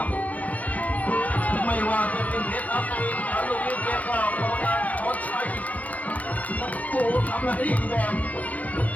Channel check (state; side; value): late; right; 0.074 ms